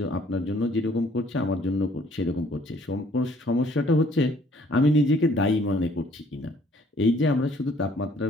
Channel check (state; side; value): normal; both; correlation 0.61